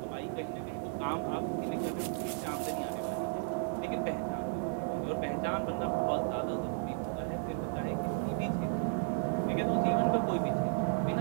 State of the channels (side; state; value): left; silent; 55 dB below the other